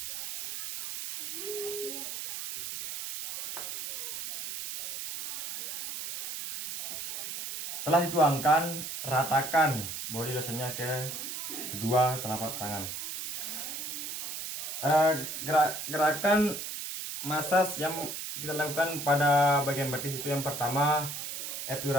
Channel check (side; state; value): right; noise; hiss, 6 dB below the sound